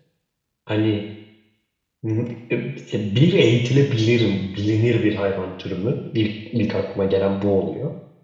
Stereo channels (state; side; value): identical; both; correlation 1.00